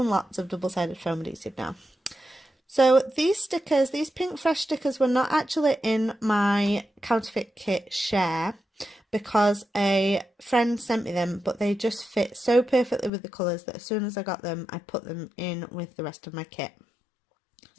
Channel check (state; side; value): drops out; right; at 13.1 s